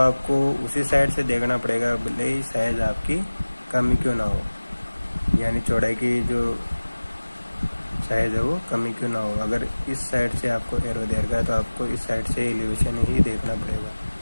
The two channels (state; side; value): inverted; both; correlation -1.00